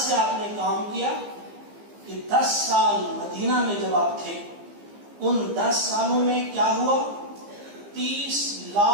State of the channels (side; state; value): left; late; 15 ms